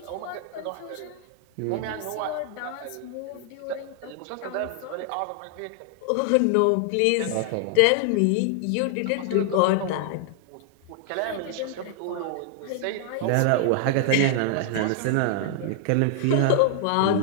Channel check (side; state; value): both; different; correlation 0.00